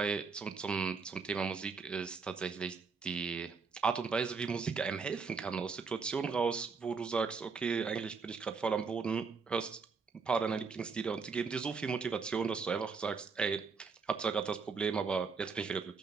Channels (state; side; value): quieter; left; 5.2 dB